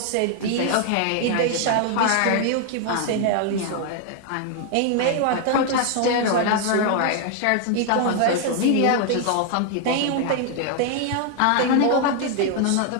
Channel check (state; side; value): different; both; correlation 0.00